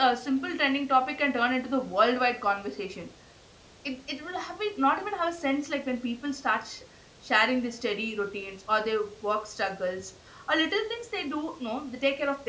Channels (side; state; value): both; identical; correlation 1.00